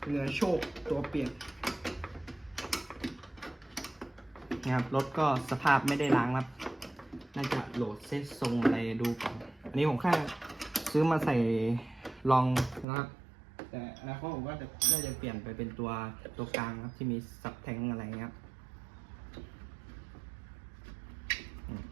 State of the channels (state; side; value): drops out; left; at 12.9 s